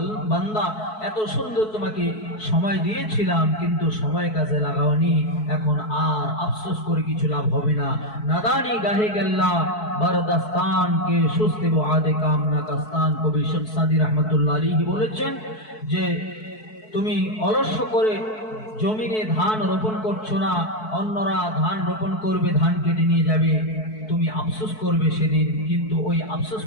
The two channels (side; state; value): right; late; 4.6 ms